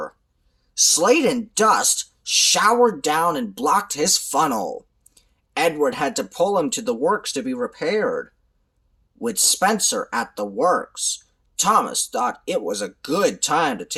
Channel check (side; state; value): both; identical; correlation 1.00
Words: Slate and dust showered down and blocked his funnel. Edward had to pull him to the works to be repaired. With Spencer at the works, Thomas thought it was a good time to